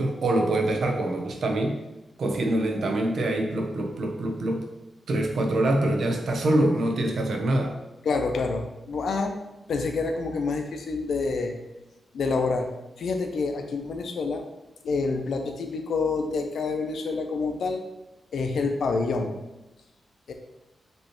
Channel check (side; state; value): both; normal; correlation 0.82